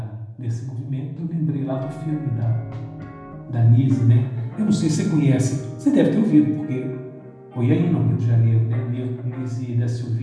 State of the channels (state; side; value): identical; both; correlation 1.00